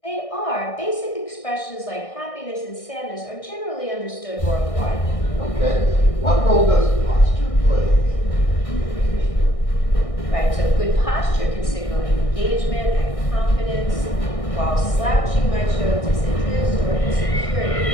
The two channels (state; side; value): late; right; 1.6 ms